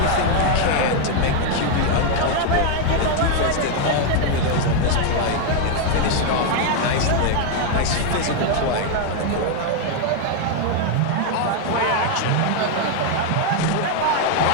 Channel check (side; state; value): both; different; correlation 0.01